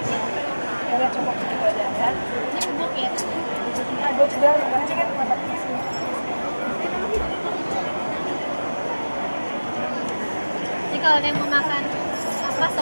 Ya udah cukup segitu aja ya. Ini bubuk ya. Nah, gue juga gimana sih kan buat sini. Jadi kalau ada yang mau makan apa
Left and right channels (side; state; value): both; inverted; correlation -1.00